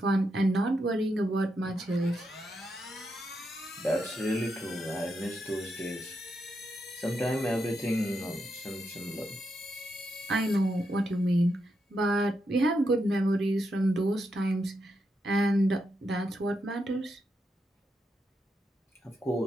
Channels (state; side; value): normal; both; correlation 0.83